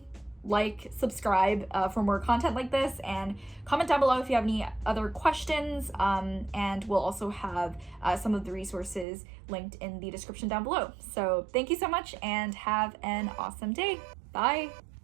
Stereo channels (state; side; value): drops out; left; at 9.1 s